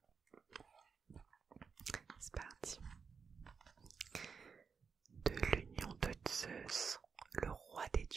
C'est parti. De l'union de Zeus, le roi des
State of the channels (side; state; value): left; quieter; 5.8 dB